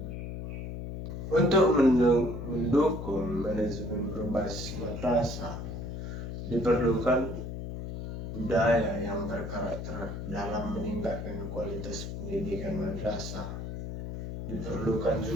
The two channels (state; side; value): noise; left; hum, 7 dB below the sound